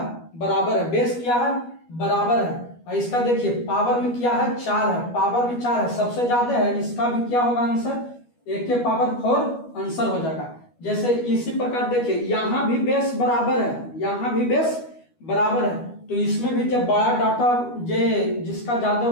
बराबर है, बेस क्या है बराबर है, और इसका देखिए पावर में क्या है 4 है, पावर में 4 है, सबसे ज्यादा है, इसका भी क्या होगा आंसर 1 के पावर 4 आंसर हो जाएगा। जैसे इसी प्रकार देखिए यहाँ भी बेस बराबर है, यहाँ भी बेस बराबर है, तो इसमें भी जब बड़ा डाटा जिसका ज्यादा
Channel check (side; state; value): right; late; 12 ms